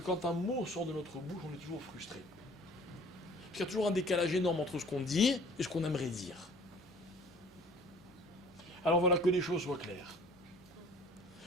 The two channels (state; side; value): normal; both; correlation 0.51